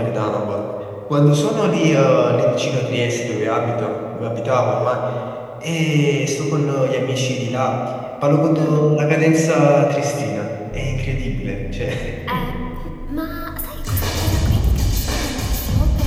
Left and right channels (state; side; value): identical; both; correlation 1.00